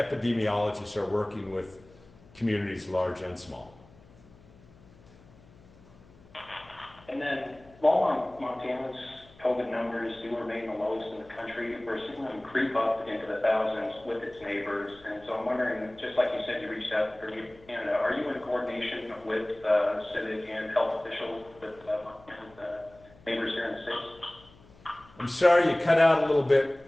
are working with communities large and small. And then, while Montana's COVID numbers do remain the lowest in the country, we're seeing them creep up into the thousands with its neighbors. And so I'm wondering, just like you said, you reached out to Canada, are you in coordination with civic and health officials with neighbors here in the States? I'm sorry, you cut out a little bit.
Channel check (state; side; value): noise; left; hum, 25 dB below the sound